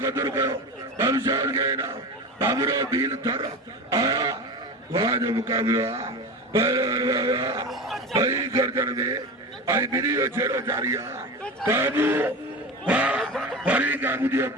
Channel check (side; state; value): both; normal; correlation 0.26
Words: कदर करो कमशाद के ना बाबरो बील थर वहाँ जो मुकाबला भाई गर्दन में आई वीडियो छेड़ो जारिया काबू फरी काबू दियो